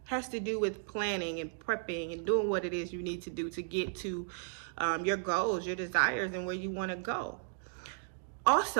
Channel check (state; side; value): silent; left; digital silence